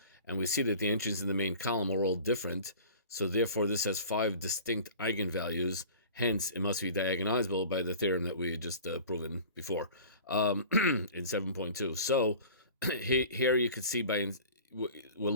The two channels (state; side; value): inverted; both; correlation -0.42